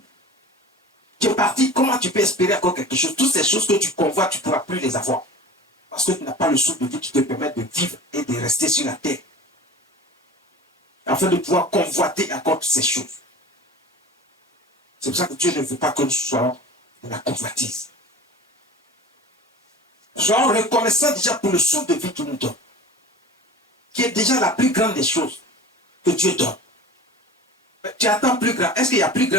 Tu es parti, comment tu peux espérer encore quelque chose? Toutes ces choses que tu convoites, tu ne pourras plus les avoir. Parce que tu n'as pas le souffle de vie qui te permet de vivre et de rester sur la terre. Afin de pouvoir convoiter encore toutes ces choses. C'est pour ça que Dieu ne veut pas que nous soyons de la convoitise. Soyons reconnaissants déjà pour le souffle de vie qu'il nous donne. Qui est déjà la plus grande des choses que Dieu donne. Mais tu attends plus grand. Est-ce qu'il y a plus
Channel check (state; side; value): normal; both; correlation 0.38